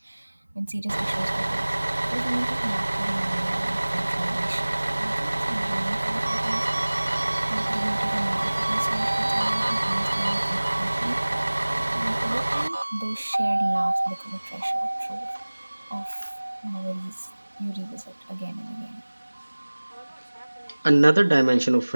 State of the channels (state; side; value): inverted; both; correlation -1.00